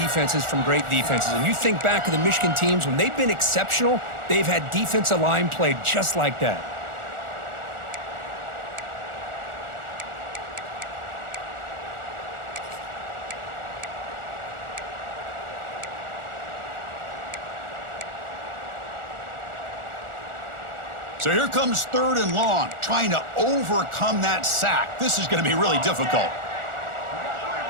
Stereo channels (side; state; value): left; late; 1.4 ms